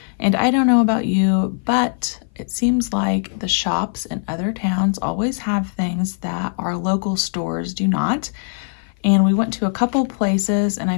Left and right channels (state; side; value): silent; right; 57 dB below the other